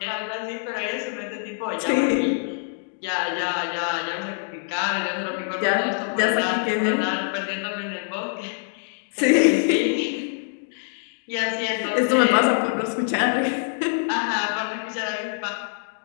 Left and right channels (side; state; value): right; silent; digital silence